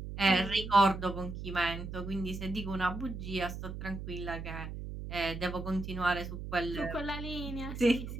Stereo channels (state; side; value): noise; right; hum, 8 dB below the sound